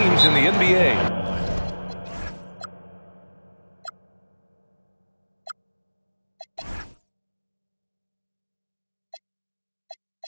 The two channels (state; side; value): inverted; both; correlation -1.00